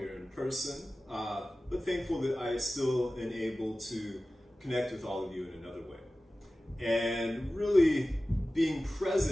in person, but thankful that I still am able to connect with all of you in another way. And really being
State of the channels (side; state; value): both; normal; correlation 0.96